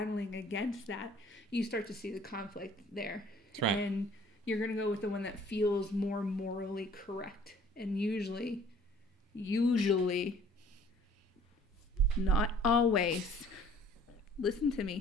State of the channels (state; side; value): normal; both; correlation 0.54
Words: against that, you start to see the conflict there. That's right. And you're going to go with the one that feels more morally correct. And usually, not always, listen to